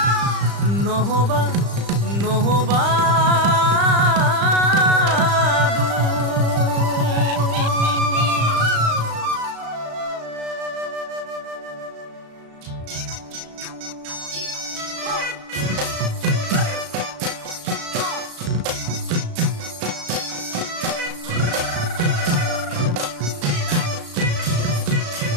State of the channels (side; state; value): left; late; 35 ms